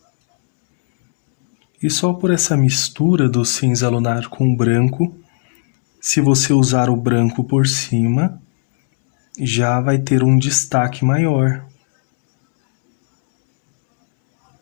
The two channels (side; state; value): right; silent; 69 dB below the other